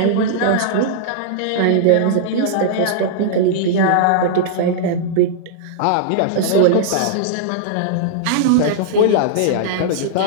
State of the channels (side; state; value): both; different; correlation -0.01